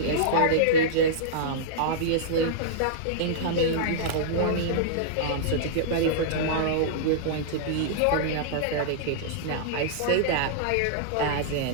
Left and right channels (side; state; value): both; different; correlation -0.02